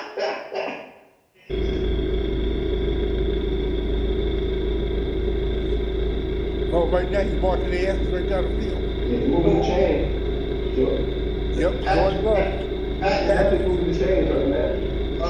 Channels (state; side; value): identical; both; correlation 1.00